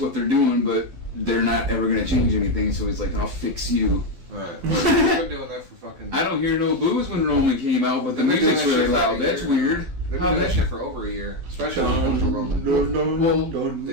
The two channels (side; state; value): left; late; 12 ms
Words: they're doing, but they're not ever going to change anything, so he's like, I'll fix you. Right. Well, they've been doing that for fucking... I don't hear no boos when Roman came out, but the They've been doing music's that really shit for loud. a That's year. weird. They've been How doing that that shit for over a year. Especially when it comes to Roman. Well,